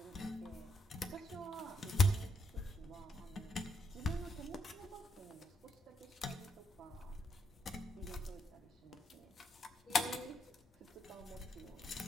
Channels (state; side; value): normal; both; correlation 0.78